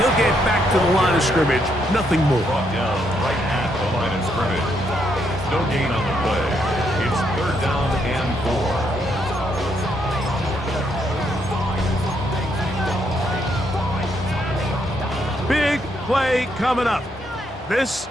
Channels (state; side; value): normal; both; correlation 0.75